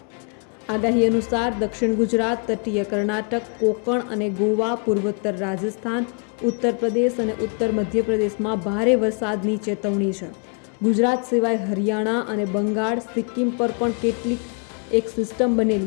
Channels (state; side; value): quieter; right; 39.7 dB